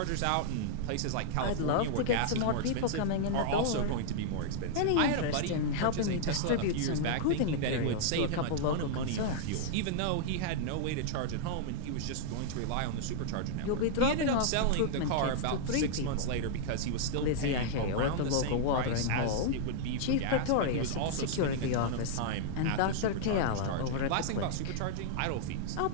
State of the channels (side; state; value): both; different; correlation -0.01